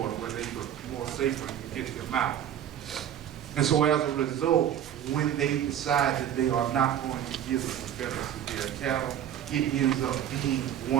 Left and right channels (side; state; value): left; quieter; 10.3 dB